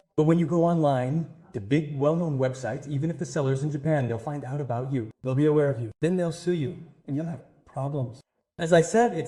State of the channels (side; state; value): both; identical; correlation 1.00